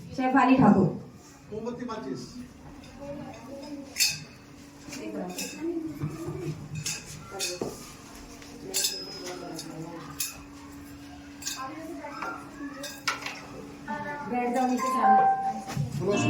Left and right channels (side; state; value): both; identical; correlation 1.00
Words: ठाकुर। बैठ जाओ नीचे